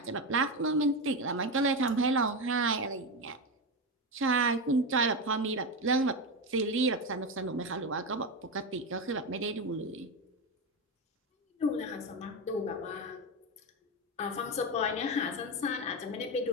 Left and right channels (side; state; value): both; normal; correlation 0.14